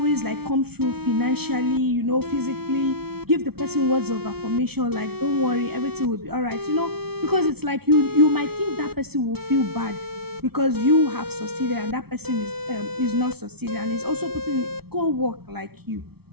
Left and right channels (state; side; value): late; left; 0.96 ms